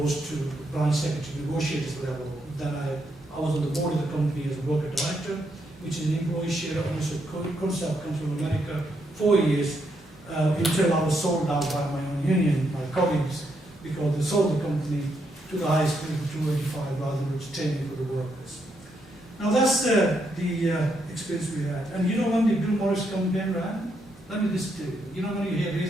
to branch secretary negotiators level. Then I was on the board of the company as a worker director, which is an employee share ownership concept, comes from America, 4 years. Until I was sold out by my own union, my colleagues, because they sold the company to the highest bid of 285 rather than retaining for the workers. Now that's the experience we had. And when the Bill Morris campaign ran, let me just tell you, when you hear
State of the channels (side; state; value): both; normal; correlation 0.78